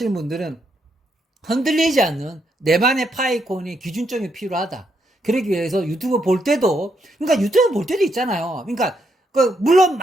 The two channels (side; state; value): both; normal; correlation 0.78